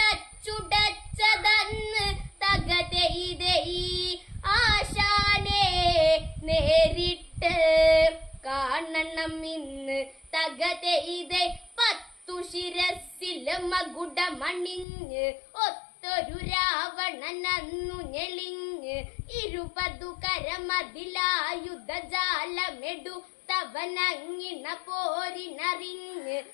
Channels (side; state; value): right; drops out; at 14.9 s